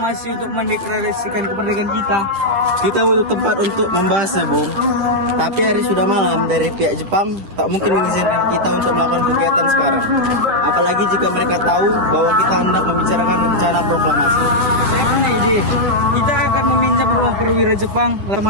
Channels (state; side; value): late; left; 9.8 ms